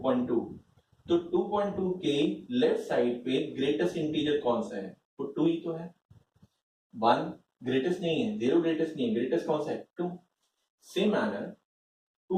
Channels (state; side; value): identical; both; correlation 1.00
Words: तो 2.2 के लेफ्ट साइड पे ग्रेटेस्ट इंटीजर कौन सा है? तो 2 ही तो है. 1 ग्रेटेस्ट नहीं है, 0 ग्रेटेस्ट नहीं है, ग्रेटेस्ट कौन सा है? 2. सेम मैनर